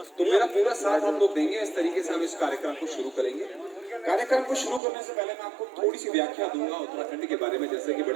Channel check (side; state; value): left; drops out; at 4.8 s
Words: तो मेरा पूरा साथ आप लोग देंगे। इस तरीके से हम इस कार्यक्रम को शुरू करेंगे। कार्यक्रम को शुरू करने से पहले मैं आपको थोड़ी सी व्याख्या दूंगा उत्तराखंड के बारे में। जैसे कि